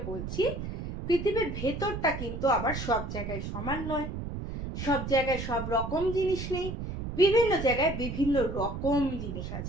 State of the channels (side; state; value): right; noise; rumble, 6 dB below the sound